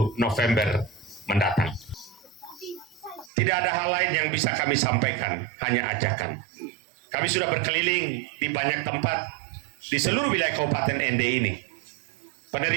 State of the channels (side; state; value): left; drops out; at 3.3 s